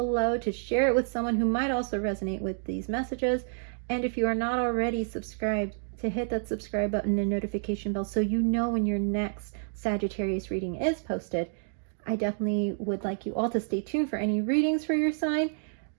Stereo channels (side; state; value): left; silent; digital silence